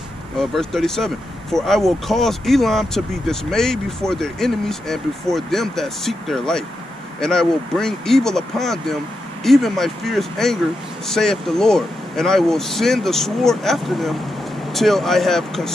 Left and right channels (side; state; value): both; normal; correlation 0.86